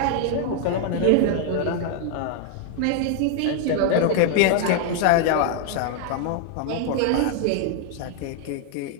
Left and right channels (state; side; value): different; both; correlation 0.00